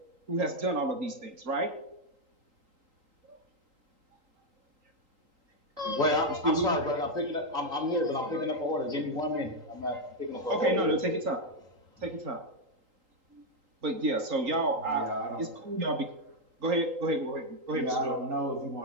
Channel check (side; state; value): left; late; 3.8 ms